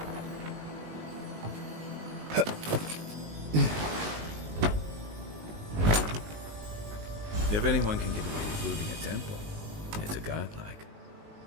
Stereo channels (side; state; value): left; late; 19 ms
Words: If anyone can get away with looting a temple, it's a godlike.